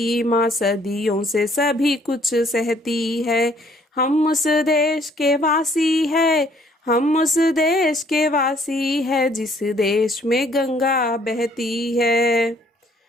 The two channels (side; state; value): both; normal; correlation 0.62